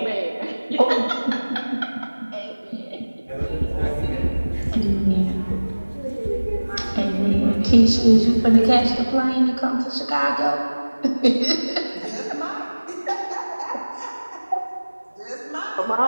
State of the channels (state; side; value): inverted; both; correlation -1.00